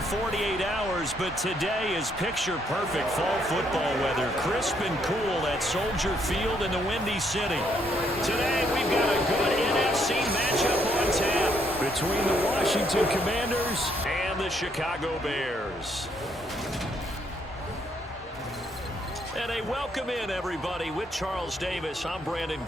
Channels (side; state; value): both; normal; correlation 0.72